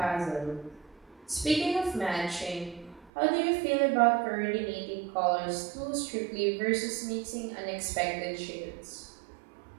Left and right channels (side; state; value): left; drops out; at 3.1 s